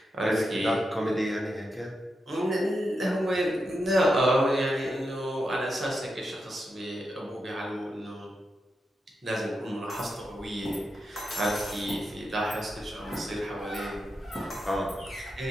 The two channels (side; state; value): both; normal; correlation 0.86